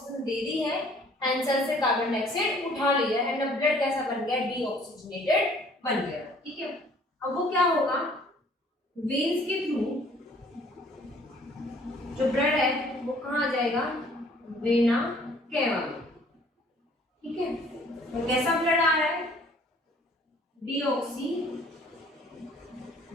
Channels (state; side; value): normal; both; correlation 0.57